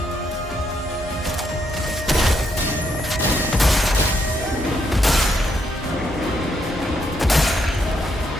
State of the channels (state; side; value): normal; both; correlation 0.76